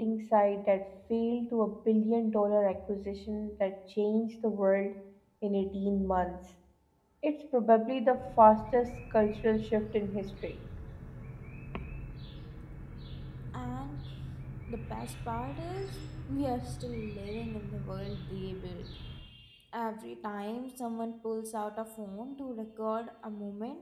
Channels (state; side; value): identical; both; correlation 1.00